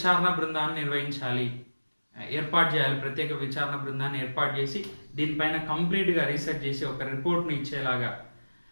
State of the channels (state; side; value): inverted; both; correlation -1.00